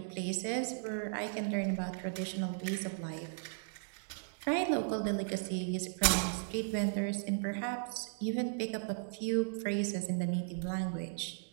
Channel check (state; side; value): silent; left; digital silence